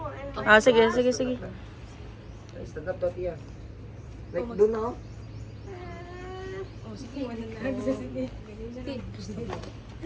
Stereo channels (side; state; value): both; identical; correlation 1.00